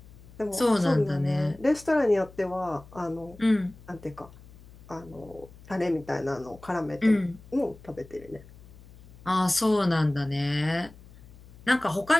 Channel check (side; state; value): left; noise; hum, 21 dB below the sound